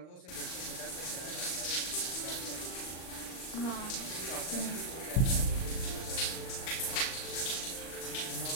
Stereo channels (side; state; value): right; late; 39 ms